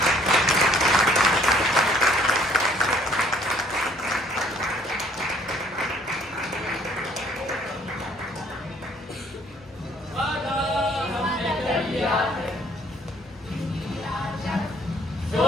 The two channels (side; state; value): both; normal; correlation 0.61